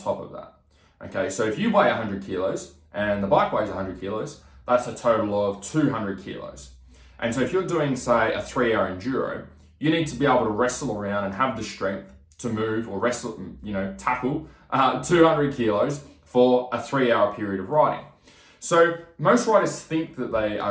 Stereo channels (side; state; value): both; identical; correlation 1.00